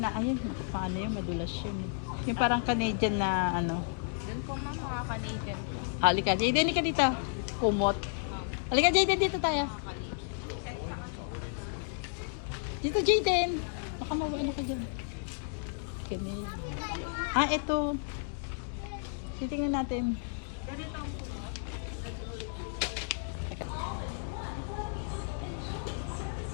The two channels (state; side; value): silent; right; digital silence